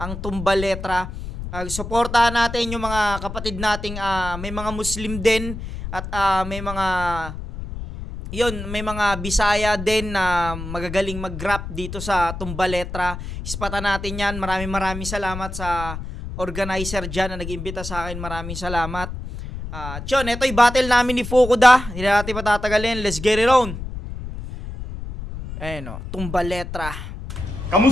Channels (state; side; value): noise; left; rumble, 8 dB below the sound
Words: ang Tumbaletra. Suportahan natin yung mga kapatid nating may mga Muslim din at may mga Bisaya din na magagaling mag-rap dito sa Tumbaletra. Ispatan natin yan. Maraming salamat sa organizer dyan na nag-imbita sa akin. Maraming salamat. Ito yung battle namin ni Fukuda. Hindi natin patatagalin. Let's get it on. Ayan o, Tumbaletra.